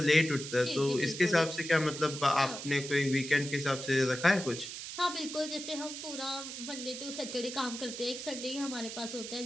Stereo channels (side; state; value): right; noise; hiss, 8 dB below the sound